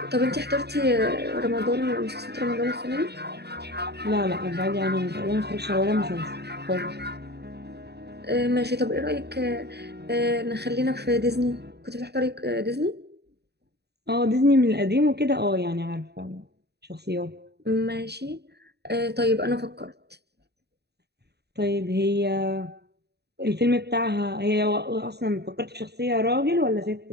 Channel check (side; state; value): left; late; 0.48 ms